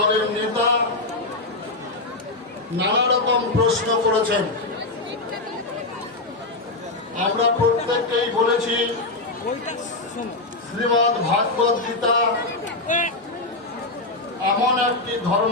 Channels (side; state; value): right; quieter; 3.0 dB